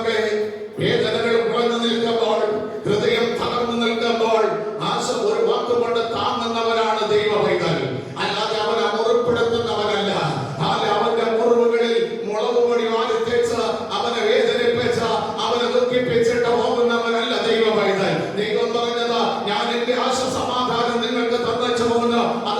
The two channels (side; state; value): both; identical; correlation 1.00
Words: വേദനകൾ കുറഞ്ഞു നിൽക്കുമ്പോൾ, ഹൃദയം തകർന്നു നിൽക്കുമ്പോൾ ഒരു വാക്കുകൊണ്ട് താങ്ങുന്നവരാണ് ദൈവമൈകൾ. അല്ലാതെ അവനെ മുറിപ്പെടുത്തുന്നവനല്ല. അവന്റെ മുറിവുകളിൽ മുളക് പൊടി വാരിത്തേച്ച് അവനെ വേദനിപ്പിച്ച് അവനെ ദുഃഖിപ്പിച്ചിട്ട് പോകുന്നവനല്ല ദൈവമൈകൾ. ദൈവം പറഞ്ഞത്, ഞാൻ എന്റെ സമാധാനം നിങ്ങൾക്ക് തന്നച്ചു പോകുന്നു.